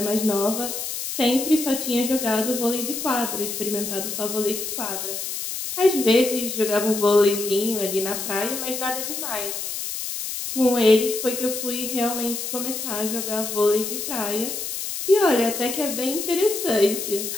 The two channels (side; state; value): left; noise; hiss, 5 dB below the sound